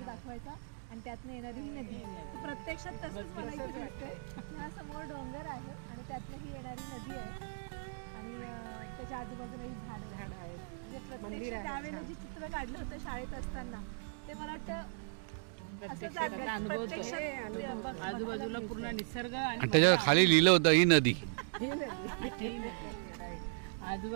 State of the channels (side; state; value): left; silent; digital silence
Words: दाखवायचा आणि त्यातनं येणारी ही नदी. प्रत्यक्षात तसंच मला इथे दिसतंय. हा समोर डोंगर आहे आणि त्यातनं ही येणारी नदी आहे आणि त्याच्या आजूबाजूला ही झाडं आहेत. म्हणजे प्रत्यक्ष त्यावेळेला जे चित्र काढलं होतं शाळेत असताना ते मला वाटतं आजूबाजूला पूर्ण निसर्ग आणि त्याच्या खाली लिहिलं होतं ही नदी.